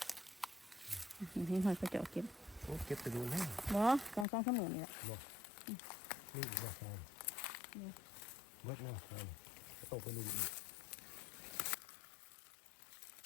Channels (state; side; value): drops out; right; at 4.2 s